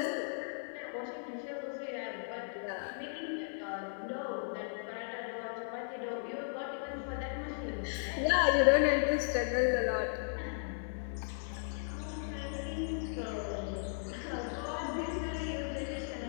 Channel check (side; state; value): right; silent; digital silence